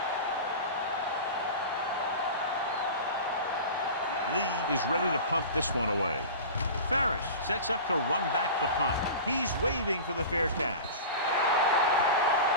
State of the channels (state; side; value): inverted; both; correlation -0.33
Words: Lee is ready to punt this one away. Ferris sets up to run back the punt. He's waving for the fair catch.